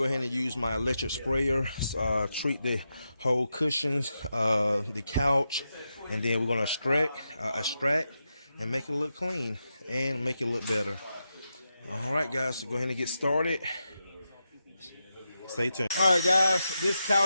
ahead and use my electric sprayer, treat the whole cushions, the couch, and then we're going to extract and make it look clean and make it look better. All right, guys, so go ahead and get started. Stay tuned. All right, guys, this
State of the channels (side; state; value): both; inverted; correlation -0.87